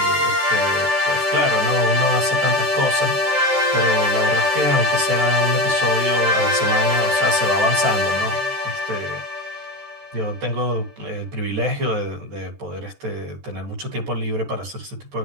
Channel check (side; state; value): left; late; 14 ms